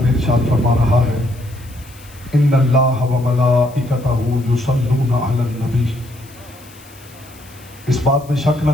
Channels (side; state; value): left; noise; hiss, 24 dB below the sound